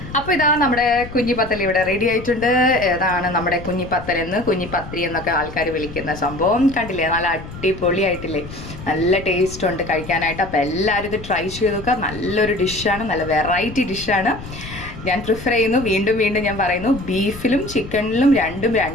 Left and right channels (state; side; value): noise; left; rumble, 13 dB below the sound